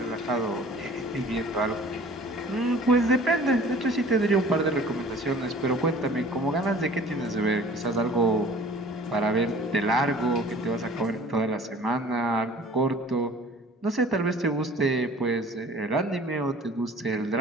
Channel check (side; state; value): both; normal; correlation 0.48